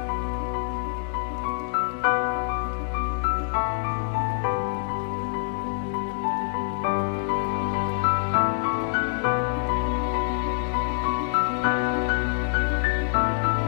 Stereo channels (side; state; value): right; silent; 58 dB below the other